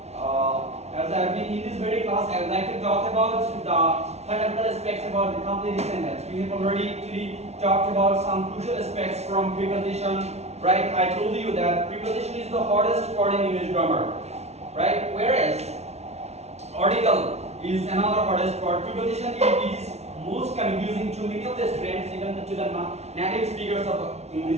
As I have been in this very class, I would like to talk about the fundamental aspects about the complete sentence. We have already talked about some crucial aspects from preposition, right? I told you that preposition is the hardest part in English grammar, right? Whereas article is another hardest part. Preposition is most confusing to many of the students, even to the native speakers of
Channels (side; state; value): left; late; 0.31 ms